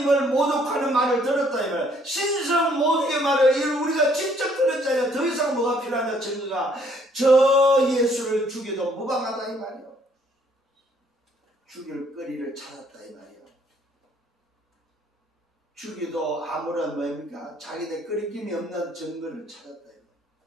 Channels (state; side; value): normal; both; correlation 0.64